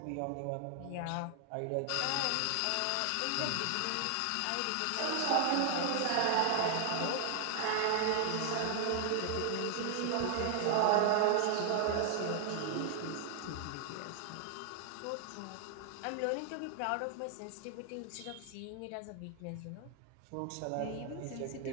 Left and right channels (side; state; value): both; different; correlation 0.00